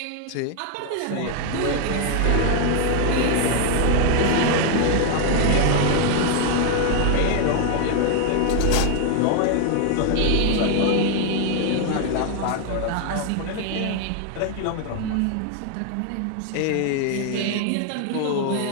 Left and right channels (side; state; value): both; different; correlation 0.00